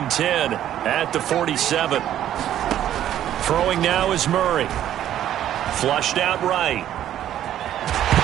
10 at the 47. Throwing now is Murray. Flushed out right.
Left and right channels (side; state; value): left; quieter; 11.5 dB